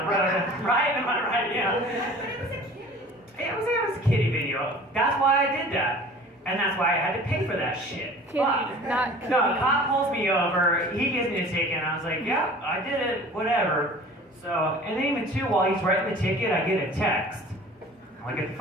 road, right? Am I right? Yeah. But it was a kitty. It was a kitty video. That's why I did that. And that's why I had to pay for that shit. Kitty, not kitty. No, a cop pulls me over, he gives me a ticket, and I was like, yeah, I did it, whatever. So, and then even too, while he's writing the ticket, I get a text. I look at the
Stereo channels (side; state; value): both; normal; correlation 0.45